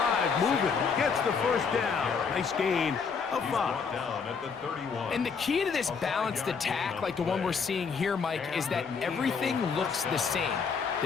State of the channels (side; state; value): right; quieter; 5.7 dB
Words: moving. Gets the first down. Nice gain of 5. Down at the 31. And the key to this balanced attack, like the one we're seeing here, Mike, is that everything looks the same.